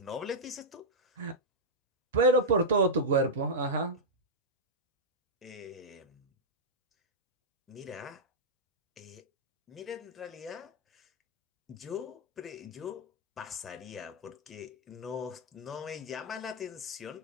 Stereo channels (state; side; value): normal; both; correlation -0.07